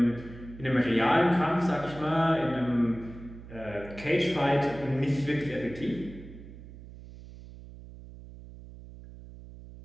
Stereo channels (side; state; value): right; noise; hum, 16 dB below the sound